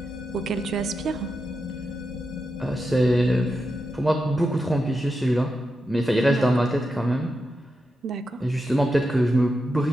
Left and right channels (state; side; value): normal; both; correlation 0.88